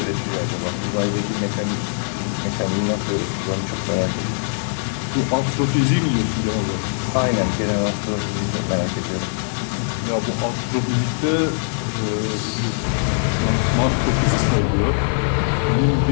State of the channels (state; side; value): silent; right; digital silence